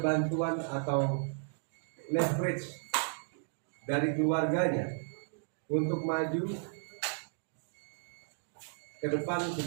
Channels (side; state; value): left; silent; digital silence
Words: bantuan atau leverage dari keluarganya untuk maju ke depan